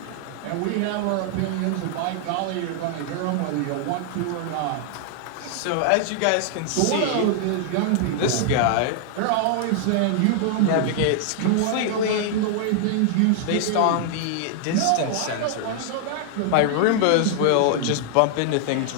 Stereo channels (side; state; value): both; different; correlation 0.00